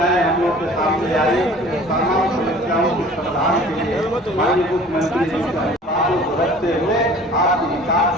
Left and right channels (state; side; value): normal; both; correlation 0.47